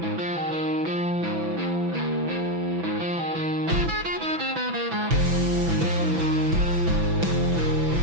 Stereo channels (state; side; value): late; left; 6.0 ms